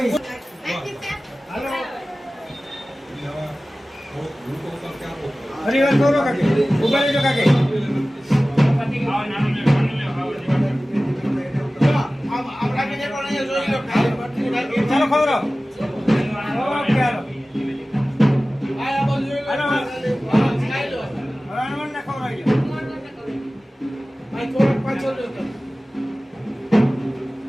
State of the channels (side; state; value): both; normal; correlation 0.97